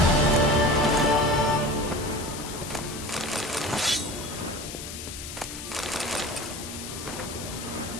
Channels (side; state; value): left; noise; hiss, 10 dB below the sound